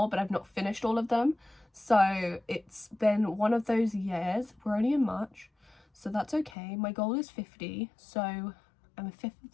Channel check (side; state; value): right; drops out; at 6.6 s